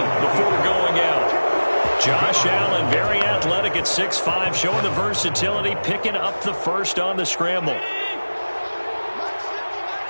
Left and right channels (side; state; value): both; inverted; correlation -1.00